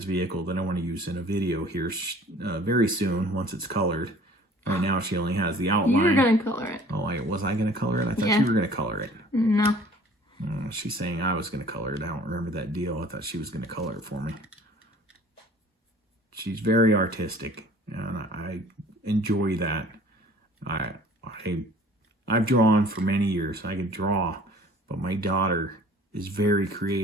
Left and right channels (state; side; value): normal; both; correlation 0.50